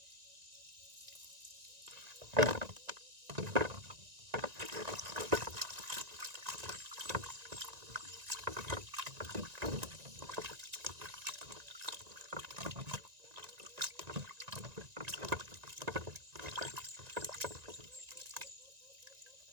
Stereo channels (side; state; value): left; late; 1.9 ms